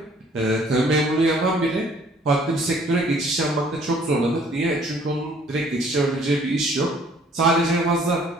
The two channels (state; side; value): normal; both; correlation 0.58